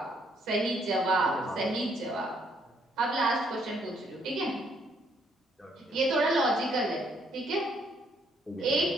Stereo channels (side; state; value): both; normal; correlation 0.69